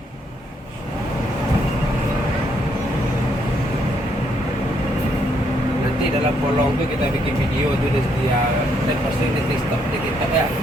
Nanti dalam kolong tuh kita bikin video tuh dia dan pasti nanti stop di TikTok ya.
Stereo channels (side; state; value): both; normal; correlation 0.73